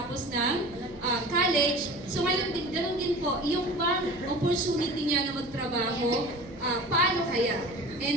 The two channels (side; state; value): right; noise; hum, 19 dB below the sound